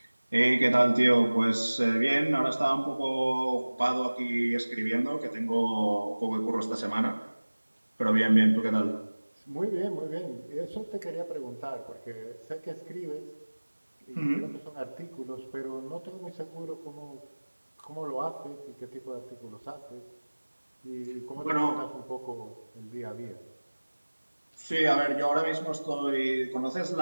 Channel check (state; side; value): inverted; both; correlation -1.00